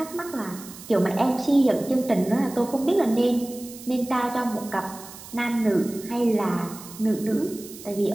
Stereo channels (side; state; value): right; noise; hiss, 16 dB below the sound